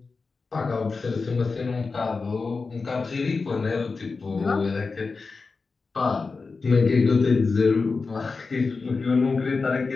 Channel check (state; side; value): quieter; right; 4.3 dB